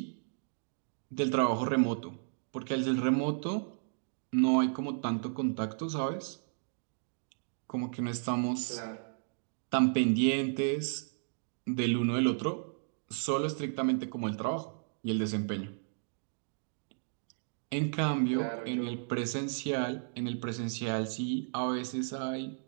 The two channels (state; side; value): silent; left; digital silence